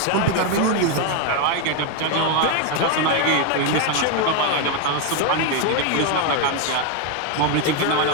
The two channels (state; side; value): different; both; correlation 0.01